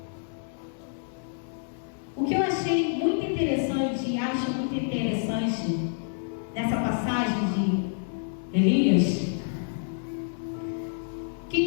O que eu achei muito interessante e acho muito interessante nessa passagem de Elias,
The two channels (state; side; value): silent; right; digital silence